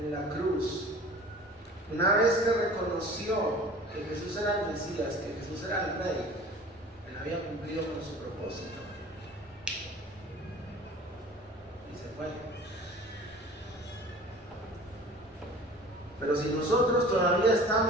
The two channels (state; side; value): normal; both; correlation 0.43